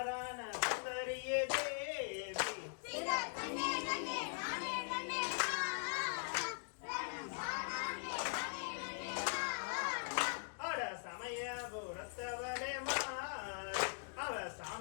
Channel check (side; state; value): right; silent; digital silence